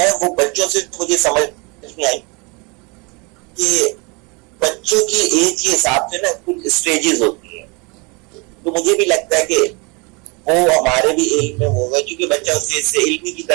वो बच्चों से मुझे समझ में आई कि बच्चों की एज के हिसाब से ना कुछ स्टेजेस होती हैं। तो मुझे भी लगता है कि वो हमारे भी इल्म में होगा क्योंकि बच्चा उस एज से इल्मी की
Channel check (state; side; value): quieter; left; 29.4 dB